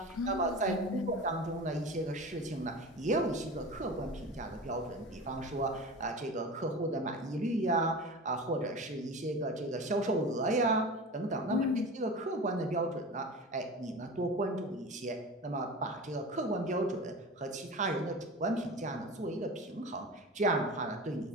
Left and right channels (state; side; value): normal; both; correlation 0.32